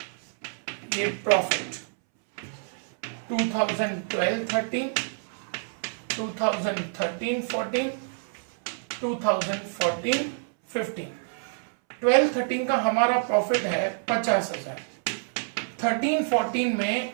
ये प्रॉफिट 2012-13, 2013-14, 2014-15। 12-13 का हमारा प्रॉफिट है 50,000। 13-14 में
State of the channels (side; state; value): left; silent; 60 dB below the other